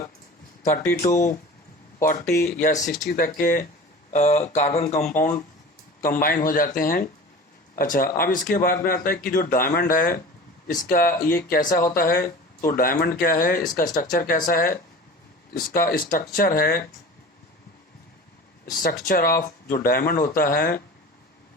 30 to 40 या 60 तक के कार्बन कंपाउंड कंबाइन हो जाते हैं। अच्छा, अब इसके बाद में आता है कि जो डायमंड है इसका ये कैसा होता है। तो डायमंड क्या है, इसका स्ट्रक्चर कैसा है, इसका स्ट्रक्चर है, स्ट्रक्चर ऑफ जो डायमंड होता है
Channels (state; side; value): normal; both; correlation 0.37